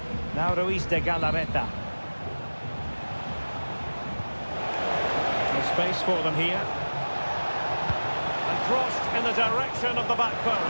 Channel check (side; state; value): both; inverted; correlation -1.00